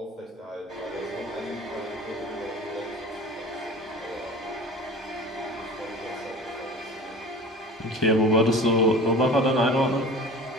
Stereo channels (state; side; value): normal; both; correlation 0.39